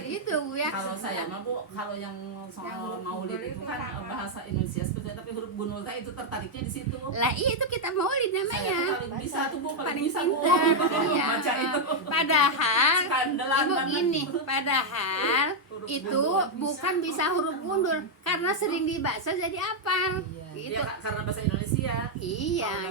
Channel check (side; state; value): both; normal; correlation -0.01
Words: itu Bu ya. Kalau saya mah Bu, kalau yang soal maulid itu kan bahasa Indonesia sebetulnya, tapi huruf bunul itu tertariknya di situ. Lah iya itu kitab maulid Saya namanya. tuh paling bisa tuh Bu, paling Paling bisa Bu pintar. Iya. baca itu. Padahal Skandalan Ibu banget. gini, padahal Huruf itu gundul. bukan bisa huruf gundul karena sering dibaca jadi hafal. Gitu. Iya, karena bahasa Indonesia. Iya